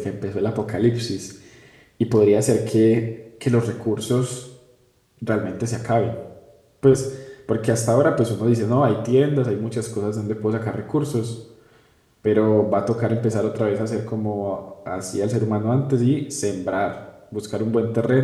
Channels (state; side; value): identical; both; correlation 1.00